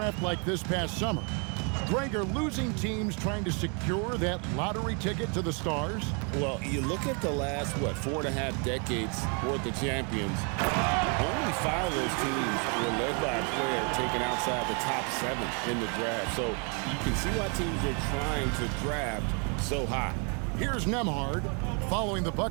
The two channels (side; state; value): left; quieter; 36.6 dB